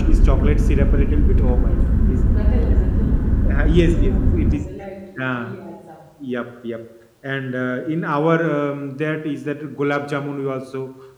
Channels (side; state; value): both; identical; correlation 1.00